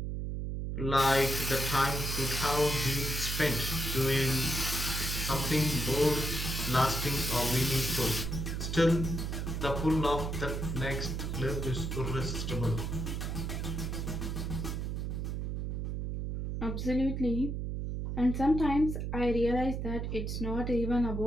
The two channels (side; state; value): right; noise; hum, 3 dB below the sound